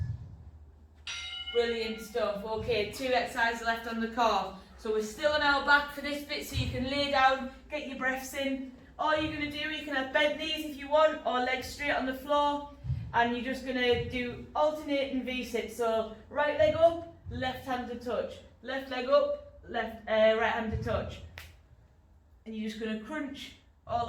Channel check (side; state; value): both; identical; correlation 1.00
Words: Brilliant stuff. Okay, 2 exercises left on the core. So we're still on our back for this bit, so you can lay down, get your breaths in. All you're going to do, you can have bent knees if you want, or legs straight on the floor, and you're just going to do alternating V-sit. So right leg up, left hand to touch. Left leg up, right hand to touch. And you're just going to crunch all